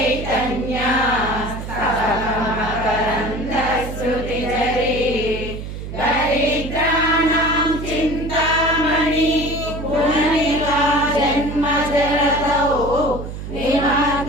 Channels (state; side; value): noise; right; hum, 8 dB below the sound